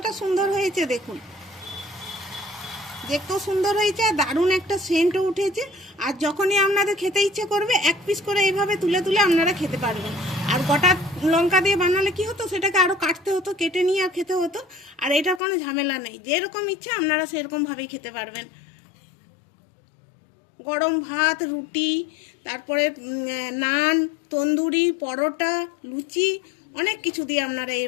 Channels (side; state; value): right; drops out; at 15.4 s